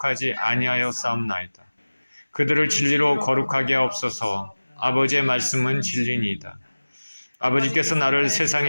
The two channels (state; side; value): inverted; both; correlation -1.00